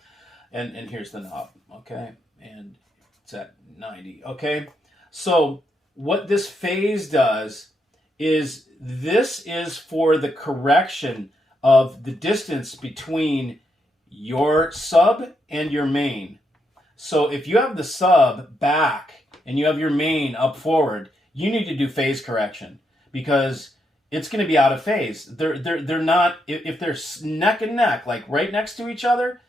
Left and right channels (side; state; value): both; normal; correlation 0.80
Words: And here's the knob, okay? And it's at 90, okay? So what this phase does is this is for the correction of the distance between your sub and your main. So if you have the sub back and you have your main up forward, you need to do phase correction because it's going to be out of phase. They're not, if they're neck and neck, like right next to each other,